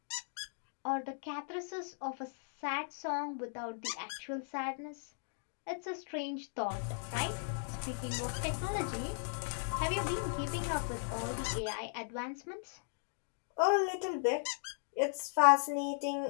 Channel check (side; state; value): right; silent; digital silence